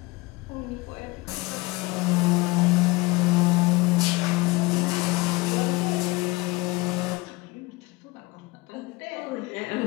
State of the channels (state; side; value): quieter; right; 23.0 dB